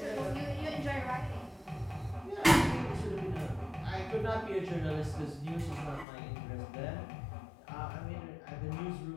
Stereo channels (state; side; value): drops out; right; at 6.1 s